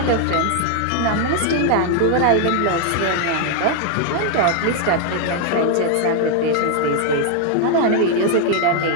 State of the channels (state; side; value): different; both; correlation 0.00